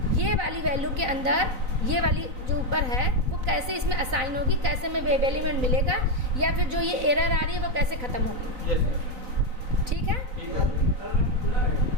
ये वाली वैल्यू के अंदर ये वाली जो ऊपर है वो कैसे इसमें असाइन होगी, कैसे में वेब एलिमेंट मिलेगा, या फिर जो ये एरर आ रही है वो कैसे ख़त्म होगी। ठीक है।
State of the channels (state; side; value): late; left; 4.0 ms